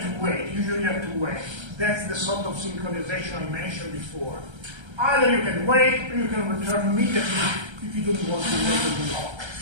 to wait. Usually you have to wait. That's the sort of synchronization I mentioned before. Either you can wait or you can return immediately if you don't want to wait on the lock.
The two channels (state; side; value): late; left; 1.3 ms